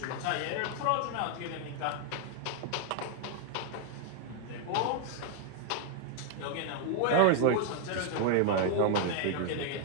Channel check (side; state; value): both; different; correlation 0.00